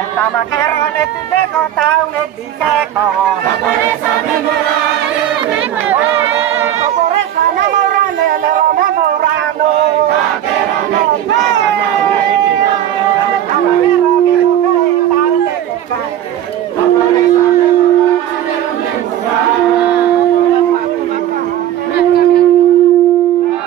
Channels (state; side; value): quieter; left; 11.4 dB